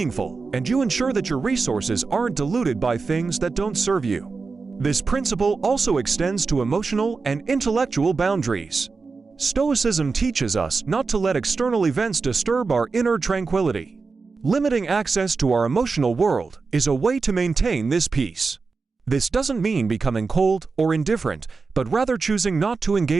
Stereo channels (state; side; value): quieter; left; 4.5 dB